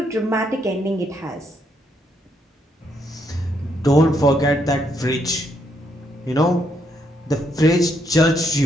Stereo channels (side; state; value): both; normal; correlation 0.75